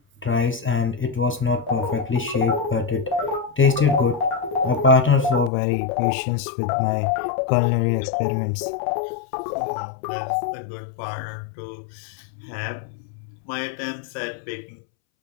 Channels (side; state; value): right; drops out; at 5.5 s